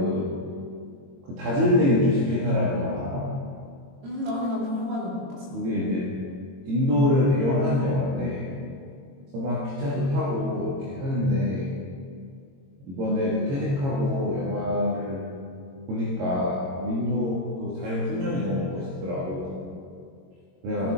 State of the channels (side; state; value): left; late; 22 ms